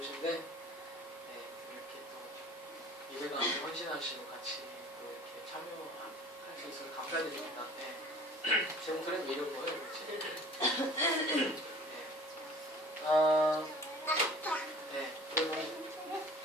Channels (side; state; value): both; normal; correlation 0.47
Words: 이렇게 또 예배 가운데 헌신하시고 같이 또 이렇게 참여할 수 있어서 감사드립니다. 제 목소리는 왜 이런 거예요? 그리고